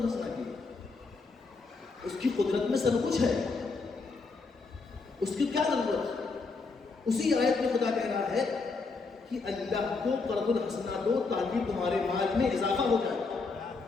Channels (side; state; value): right; quieter; 4.2 dB